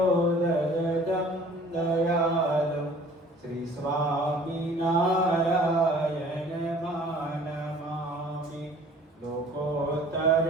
ददतं दयालु श्री स्वामिनारायणमानमामि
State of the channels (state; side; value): normal; both; correlation 0.50